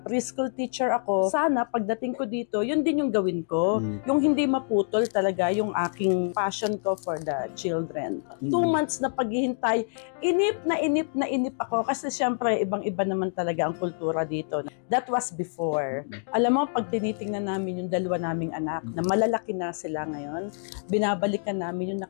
preschool teacher ako, sana pagdating ko dito, yun din yung gawin ko. Yung hindi maputol talaga yung aking passion ko for the children. 2 months na paghihintay, inip na inip ako kasi syempre, ibang-iba naman talaga ang kultura dito. That was before. Alam mo, pag tinitingnan namin yung 2 naming anak, na malalaki na sila ngayon, binabalikan namin yung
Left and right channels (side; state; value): right; silent; digital silence